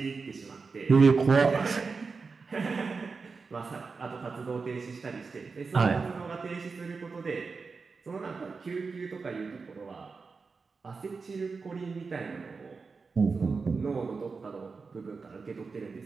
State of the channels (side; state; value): left; quieter; 4.7 dB